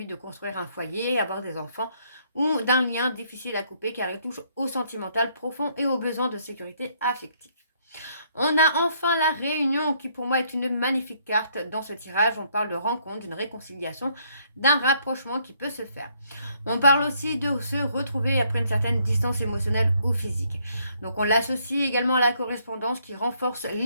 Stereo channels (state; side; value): inverted; both; correlation -0.69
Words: de construire un foyer, avoir des enfants, ou d'un lien difficile à couper car il touche au sentimental profond et aux besoins de sécurité affective. On a enfin la réunion qui pour moi est une magnifique carte dans ce tirage. On parle de rencontre, d'une réconciliation, d'un rapprochement qui peut se faire. On parle aussi de se retrouver après une certaine distance émotionnelle ou physique. Donc on l'associe également à la correspondance qui renforce